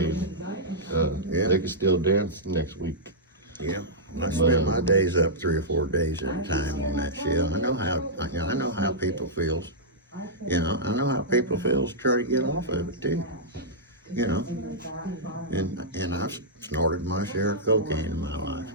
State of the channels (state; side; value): normal; both; correlation -0.11